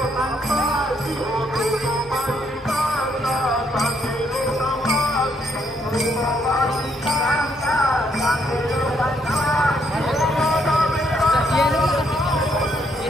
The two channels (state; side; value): normal; both; correlation 0.73